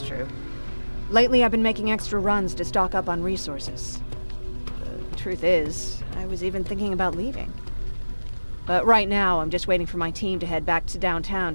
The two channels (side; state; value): both; inverted; correlation -1.00